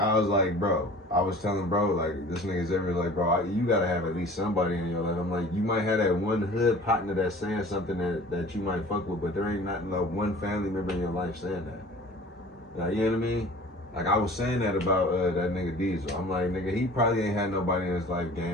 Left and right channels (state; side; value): normal; both; correlation 0.45